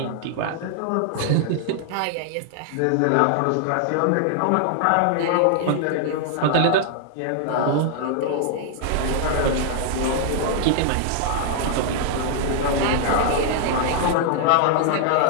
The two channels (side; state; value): both; different; correlation -0.01